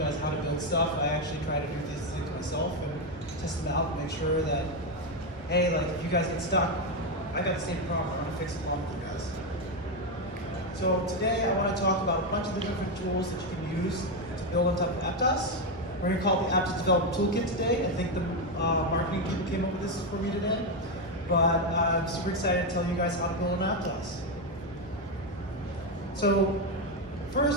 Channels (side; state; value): both; normal; correlation 0.07